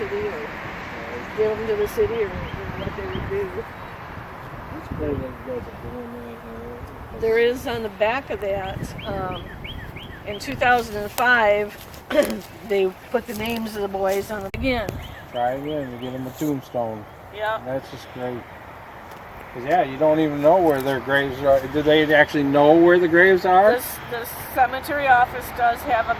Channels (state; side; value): identical; both; correlation 1.00